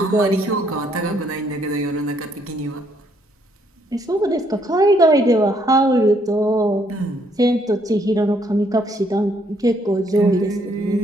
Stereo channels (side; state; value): both; normal; correlation 0.69